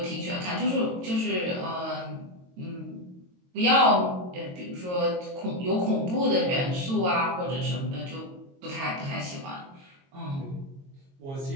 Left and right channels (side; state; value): left; late; 22 ms